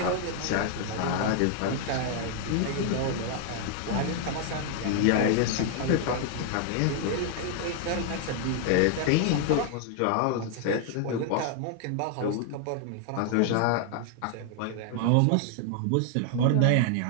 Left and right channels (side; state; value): both; different; correlation 0.00